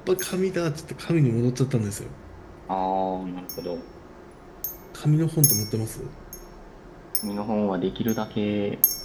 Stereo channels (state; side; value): identical; both; correlation 1.00